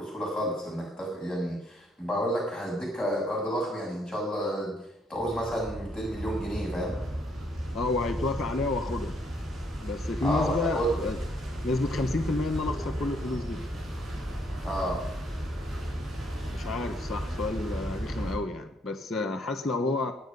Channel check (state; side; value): normal; both; correlation 0.70